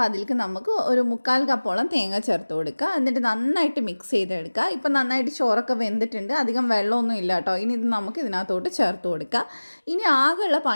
അതിലേക്ക് നമുക്ക് ഒരു 1/4 കപ്പോളം തേങ്ങ ചേർത്ത് കൊടുക്കുക. എന്നിട്ട് നന്നായിട്ട് മിക്സ് ചെയ്തെടുക്കുക. ഇപ്പം നന്നായിട്ട് ചോറൊക്കെ വെന്തിട്ടുണ്ട്, അധികം വെള്ളമൊന്നും ഇല്ല കേട്ടോ. ഇനി ഇത് നമുക്ക് ഇതിനകത്തോട്ട് ചേർത്ത് കൊടുക്കുക. ഇനി ആകെയുള്ള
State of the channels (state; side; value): inverted; both; correlation -1.00